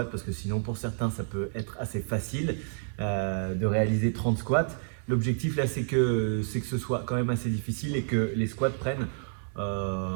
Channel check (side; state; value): left; silent; 58 dB below the other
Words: parce que sinon pour certains ça peut être assez facile de réaliser 30 squats. L'objectif là c'est que ce soit quand même assez difficile et que les squats prennent